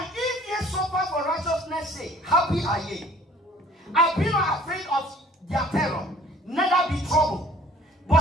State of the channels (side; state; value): both; normal; correlation 0.53